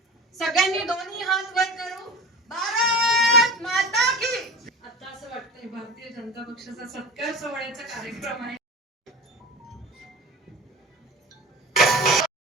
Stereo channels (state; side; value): normal; both; correlation 0.34